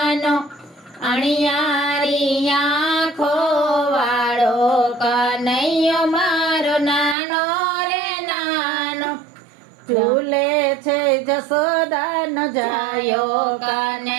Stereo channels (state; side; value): drops out; left; at 7.2 s